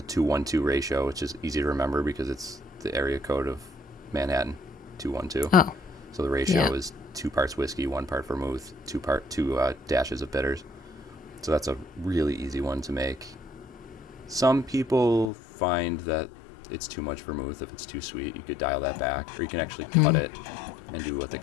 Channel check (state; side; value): drops out; right; at 15.3 s